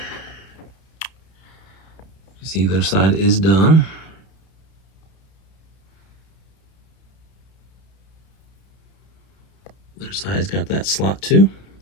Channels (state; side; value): late; right; 31 ms